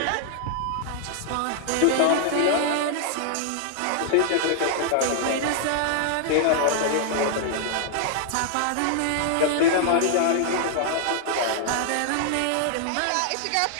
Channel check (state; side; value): different; both; correlation 0.00